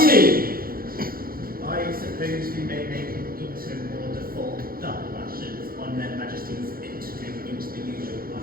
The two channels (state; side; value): late; left; 0.42 ms